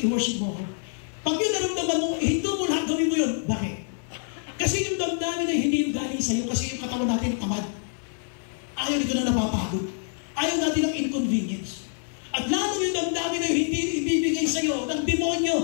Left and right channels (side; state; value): right; silent; 61 dB below the other